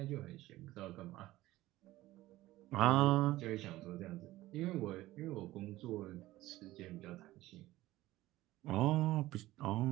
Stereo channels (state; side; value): quieter; left; 16.8 dB